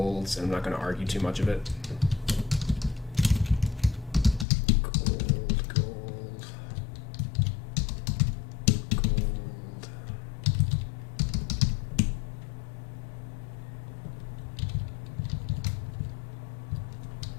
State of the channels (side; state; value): right; drops out; at 4.5 s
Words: and I'm not going to argue too much of it. Gold, gold, gold.